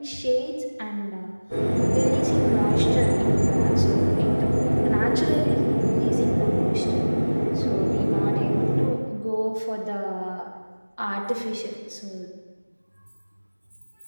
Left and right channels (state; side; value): inverted; both; correlation -1.00